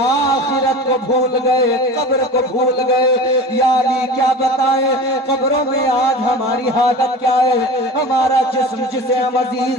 को भूल गए, कब्र को भूल गए। या अली क्या बताए, कब्रों में आज हमारी हालत क्या है। हमारा जिस्म जिसे हम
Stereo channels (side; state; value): both; normal; correlation 0.34